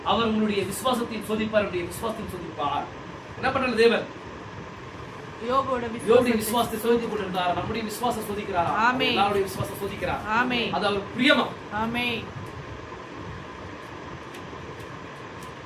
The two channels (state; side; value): identical; both; correlation 1.00